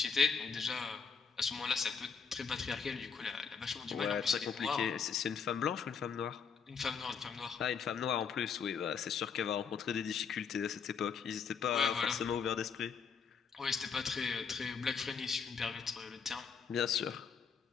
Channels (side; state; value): right; quieter; 6.1 dB